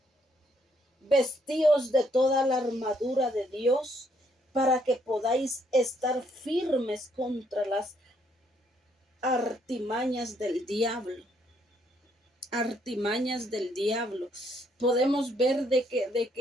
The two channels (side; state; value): both; normal; correlation 0.71